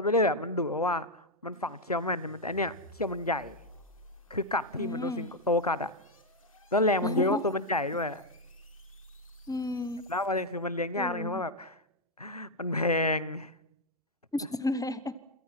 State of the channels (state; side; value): normal; both; correlation 0.04